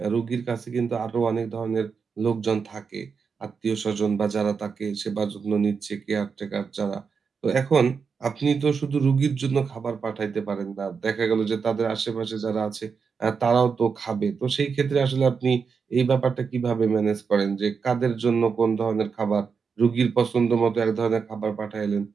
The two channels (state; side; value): quieter; left; 5.7 dB